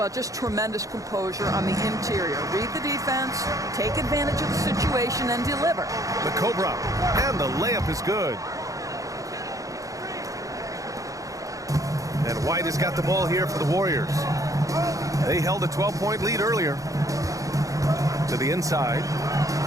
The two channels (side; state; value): left; late; 0.16 ms